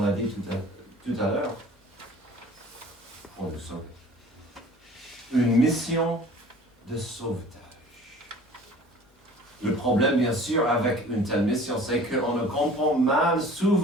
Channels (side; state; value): both; normal; correlation 0.47